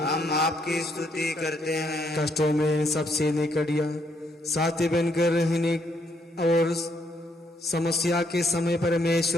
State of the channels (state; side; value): normal; both; correlation 0.72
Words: आपकी स्तुति करते हैं। कष्टों में सबसे निकट या साथी बनकर रहने और समस्या के समय